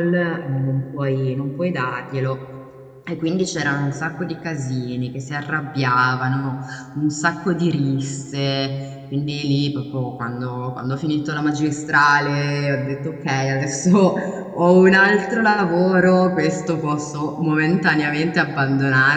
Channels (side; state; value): both; identical; correlation 1.00